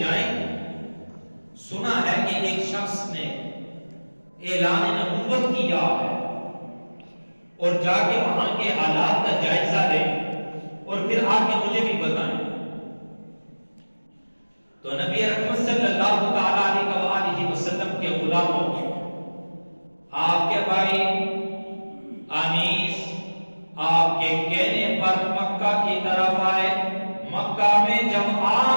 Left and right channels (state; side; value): inverted; both; correlation -1.00